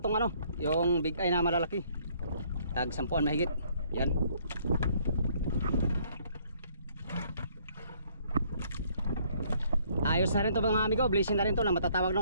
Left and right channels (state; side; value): inverted; both; correlation -0.63